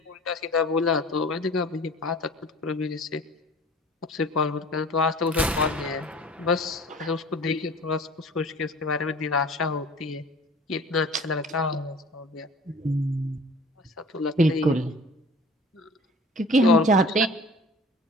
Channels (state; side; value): normal; both; correlation 0.44